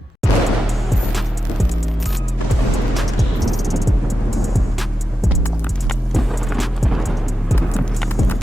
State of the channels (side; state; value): both; normal; correlation 0.90